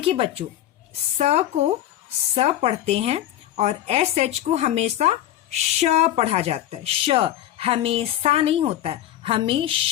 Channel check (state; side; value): quieter; right; 12.7 dB